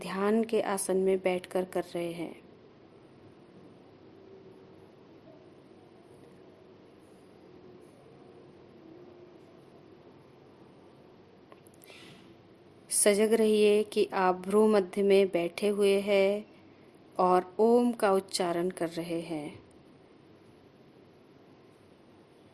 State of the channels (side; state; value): both; identical; correlation 1.00